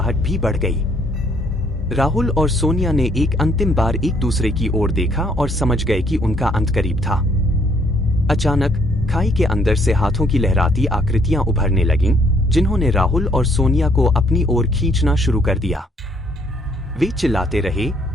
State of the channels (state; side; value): normal; both; correlation 0.66